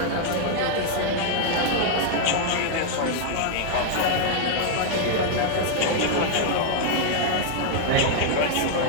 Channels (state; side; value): different; both; correlation 0.00